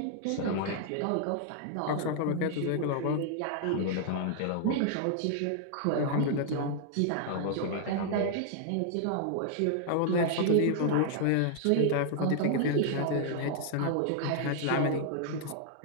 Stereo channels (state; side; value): different; both; correlation -0.01